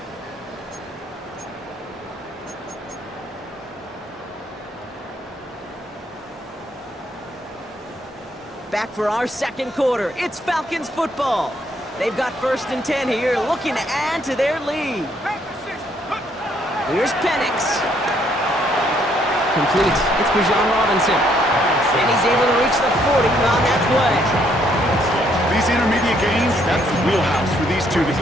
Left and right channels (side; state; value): both; normal; correlation 0.69